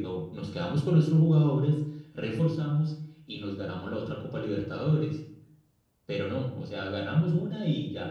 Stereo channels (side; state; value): both; identical; correlation 1.00